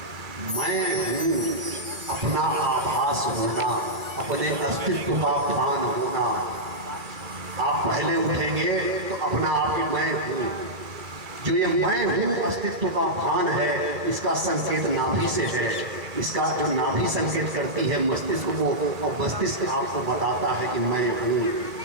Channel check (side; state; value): left; late; 2.4 ms